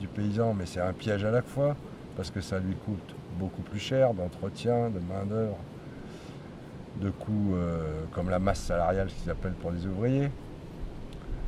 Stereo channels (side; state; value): both; identical; correlation 1.00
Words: paysan, mais c'est un piège à la fois, parce que ça lui coûte beaucoup plus cher d'entretien, de main-d'œuvre, de coûts comme la masse salariale, ce qu'ils appellent pour les ouvriers.